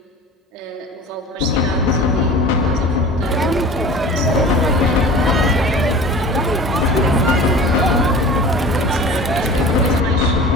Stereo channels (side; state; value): both; normal; correlation 0.39